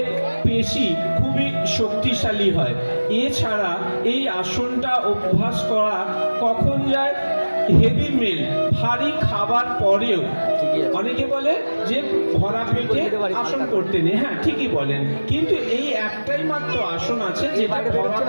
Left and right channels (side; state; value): both; inverted; correlation -1.00